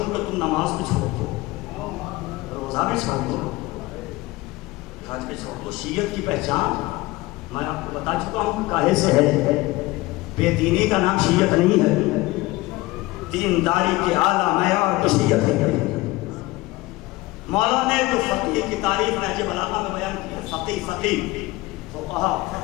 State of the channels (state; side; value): quieter; right; 20.1 dB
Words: کہ تم نماز بھی چھوڑ دو، روزہ بھی چھوڑ دو، حج بھی چھوڑ دو۔ شیعت کی پہچان میں آپ کو بتا چکا ہوں کاہے سے ہے۔ بے دینی کا نام شیعت نہیں ہے، دینداری کے اعلیٰ معیار تو شیعت ہے۔ مولا نے جو فقیہ کی تعریف نہج بلاغہ میں بیان کی ہے، فقیہ فقہا،